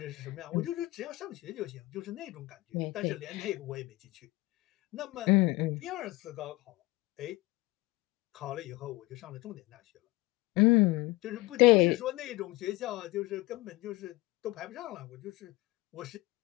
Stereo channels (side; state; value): right; quieter; 20.6 dB